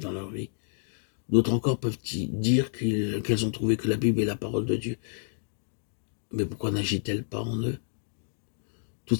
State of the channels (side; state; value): right; silent; digital silence